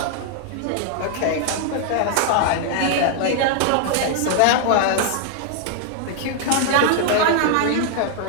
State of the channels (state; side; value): different; both; correlation 0.00